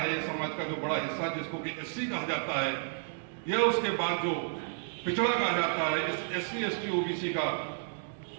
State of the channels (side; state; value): left; silent; digital silence